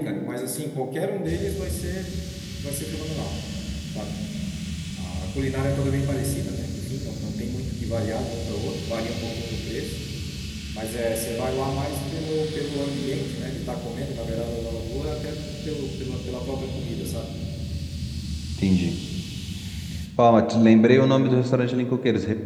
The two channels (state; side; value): identical; both; correlation 1.00